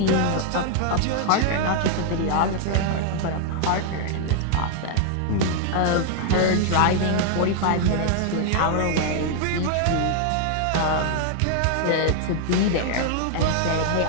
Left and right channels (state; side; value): different; both; correlation 0.00